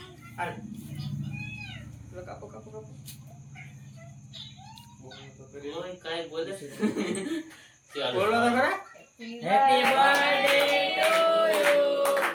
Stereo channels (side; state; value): both; identical; correlation 1.00